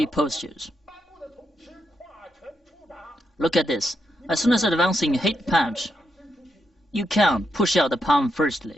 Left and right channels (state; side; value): normal; both; correlation 0.82